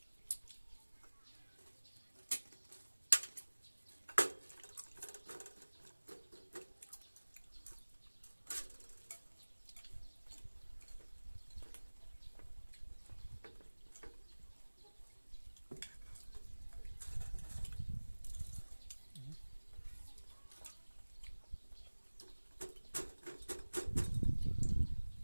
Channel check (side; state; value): both; inverted; correlation -1.00